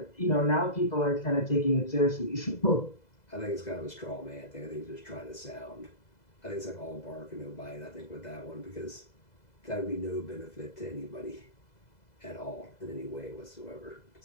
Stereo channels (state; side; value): late; right; 2.0 ms